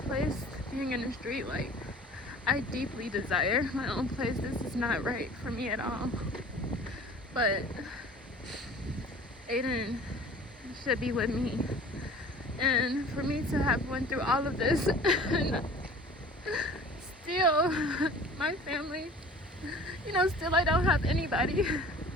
being in the street. I deeply desire my own place. This is not right for me at all. But Aiden should be with me. And for me to have went through all of this and still my family, still I don't have anybody.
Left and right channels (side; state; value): both; normal; correlation 0.45